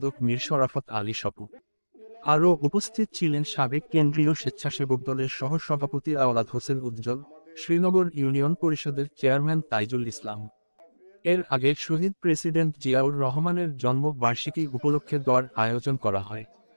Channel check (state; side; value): inverted; both; correlation -1.00